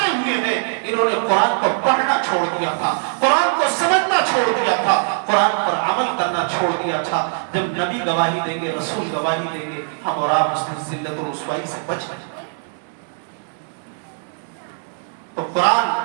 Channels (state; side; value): silent; left; 65 dB below the other